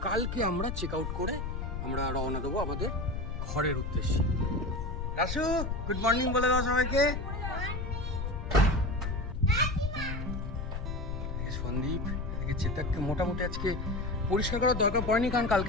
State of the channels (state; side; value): noise; left; rumble, 4 dB below the sound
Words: কালকে আমরা চেক আউট করে আমরা রওনা দেবো আমাদের ঘরের উদ্দেশ্যে। রাসু, গুড মর্নিং বলে দাও সবাইকে। সন্দীপ, এদিকে চেতককে মোটামুটি আজকে পরিষ্কার করার দরকার পড়েনি, কারণ